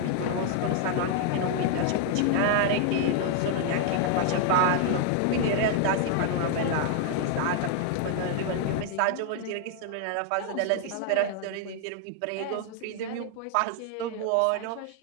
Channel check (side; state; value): both; different; correlation 0.00